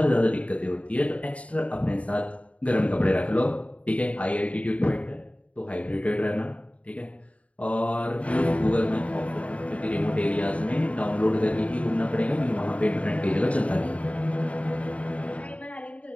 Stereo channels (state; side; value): late; right; 0.066 ms